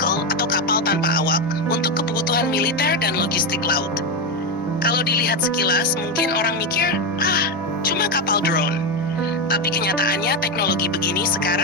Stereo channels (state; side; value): normal; both; correlation 0.10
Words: atau kapal tanpa awak untuk kebutuhan militer dan logistik laut. Kalau dilihat sekilas, mungkin orang mikir, cuma kapal drone. Tapi kenyataannya teknologi begini